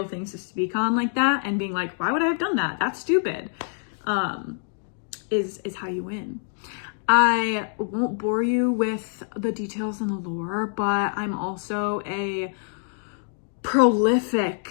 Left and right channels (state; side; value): silent; right; digital silence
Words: things to speak on like that and being like, why would I have done that? That's stupid. Is how you win. I won't bore you with the details and the lore, but I'm also a prolific